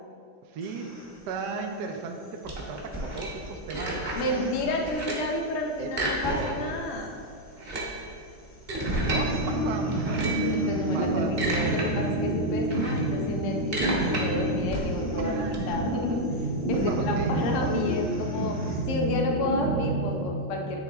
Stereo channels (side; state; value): both; normal; correlation 0.00